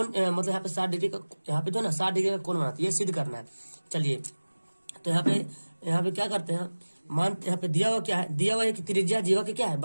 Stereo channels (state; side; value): inverted; both; correlation -1.00